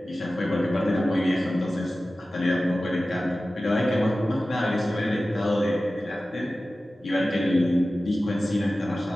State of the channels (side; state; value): both; normal; correlation 0.95